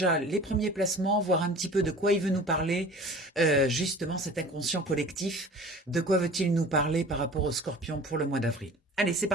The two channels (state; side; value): normal; both; correlation 0.42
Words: les premiers placements, voir un petit peu de quoi il veut nous parler, justement cet inconscient collectif, de quoi veut-il nous parler par rapport au Scorpion pour le mois d'avril. Allez, c'est